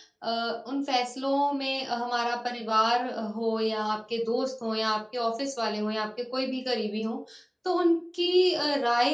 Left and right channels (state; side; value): identical; both; correlation 1.00